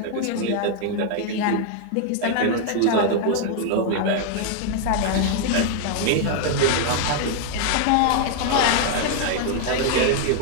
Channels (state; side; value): different; both; correlation 0.00